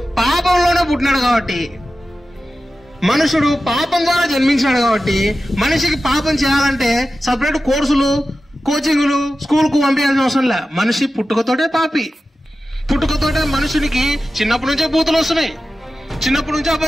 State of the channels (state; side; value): normal; both; correlation 0.94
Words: పాపంలోనే పుట్టినాడు కాబట్టి, మనుషుడు పాపం ద్వారా జన్మించినాడు కాబట్టి, మనిషికి పాపం చేయాలంటే సపరేట్ కోర్సులు, కోచింగులు, స్కూల్కు పంపించాల్సిన అవసరం లే. మనిషి పుట్టుకతోటే పాపి. పుట్టుకతోటే మనుషునికి చిన్నప్పటి నుంచే బూతులు వస్తున్నాయి, చిన్నప్పటి నుంచే